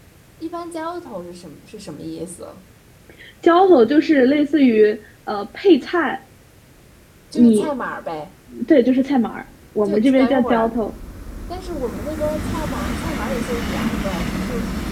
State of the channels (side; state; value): both; identical; correlation 1.00